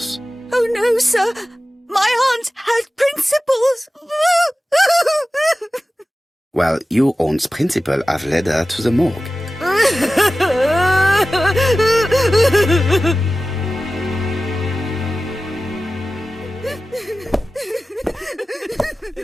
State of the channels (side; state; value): both; normal; correlation 0.95